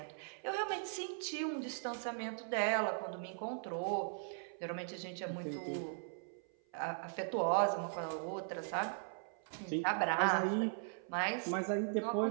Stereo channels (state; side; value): silent; left; 52 dB below the other